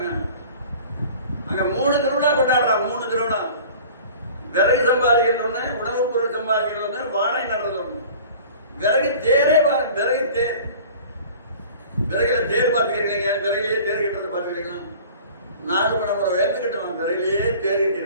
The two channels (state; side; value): inverted; both; correlation -0.44